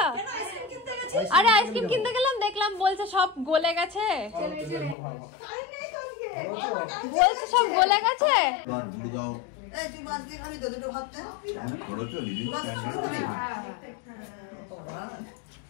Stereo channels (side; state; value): right; drops out; at 5.0 s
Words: আরে আইসক্রিম কিনতে গেলাম, দেখলাম বলছে সব গলে গেছে, বলছে সব গলে গেছে।